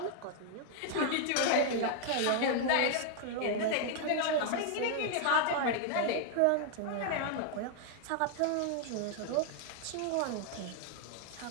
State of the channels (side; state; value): both; different; correlation 0.00